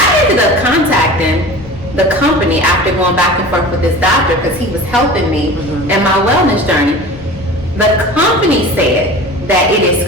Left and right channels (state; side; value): normal; both; correlation 0.37